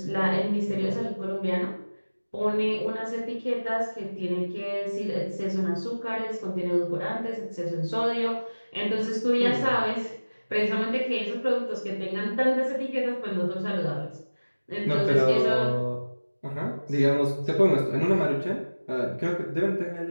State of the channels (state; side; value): inverted; both; correlation -1.00